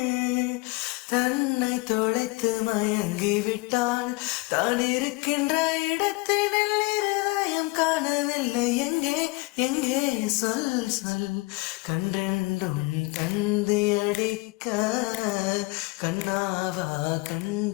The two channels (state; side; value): quieter; right; 24.3 dB